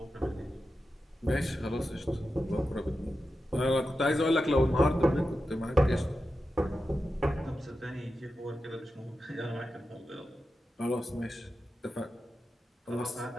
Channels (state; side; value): normal; both; correlation 0.91